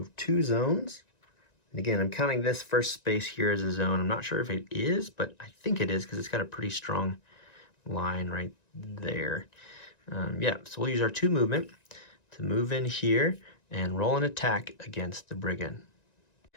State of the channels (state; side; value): late; right; 1.9 ms